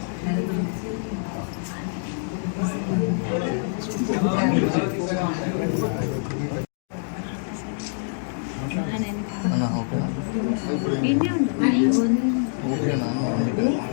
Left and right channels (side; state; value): right; silent; digital silence